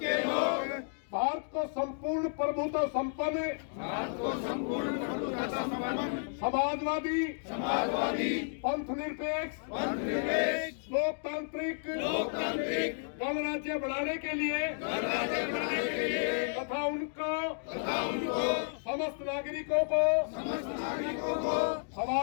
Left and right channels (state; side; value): silent; right; digital silence